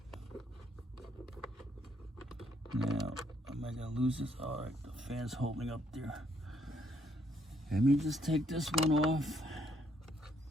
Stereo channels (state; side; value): normal; both; correlation 0.71